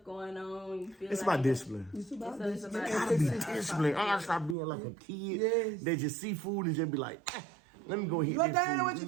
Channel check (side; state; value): left; drops out; at 4.5 s